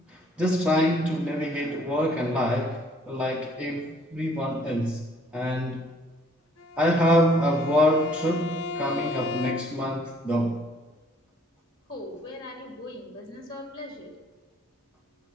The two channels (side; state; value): both; normal; correlation 0.61